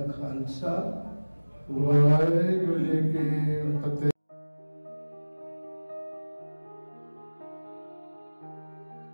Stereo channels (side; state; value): both; inverted; correlation -1.00